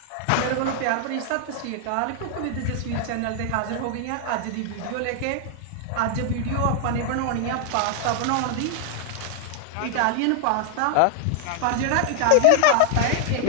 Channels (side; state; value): both; different; correlation 0.00